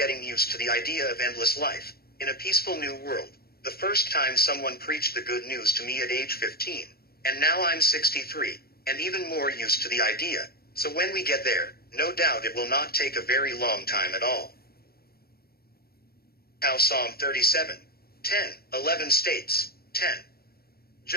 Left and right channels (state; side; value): late; right; 0.45 ms